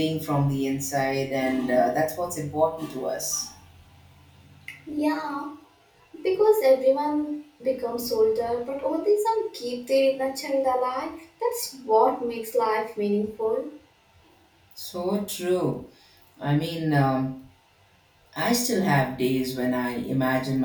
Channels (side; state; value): both; identical; correlation 1.00